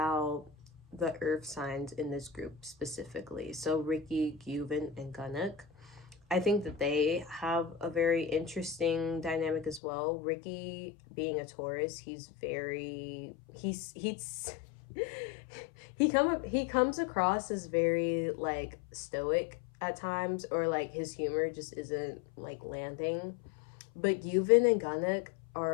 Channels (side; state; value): right; drops out; at 9.8 s